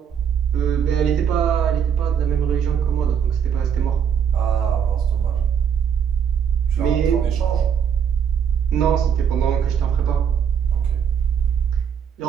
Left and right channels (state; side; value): quieter; left; 7.8 dB